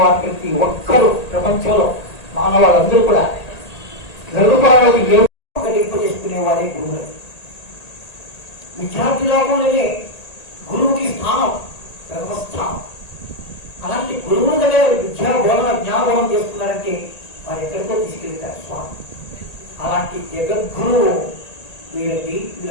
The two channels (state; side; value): late; right; 1.8 ms